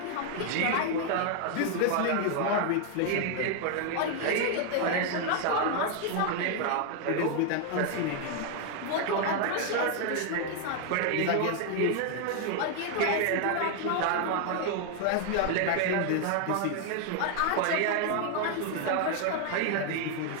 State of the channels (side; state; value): both; different; correlation 0.00